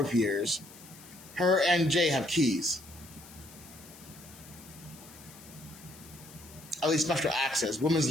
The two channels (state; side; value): noise; left; hiss, 19 dB below the sound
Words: years. Her and Jay have keys. At least special access, women's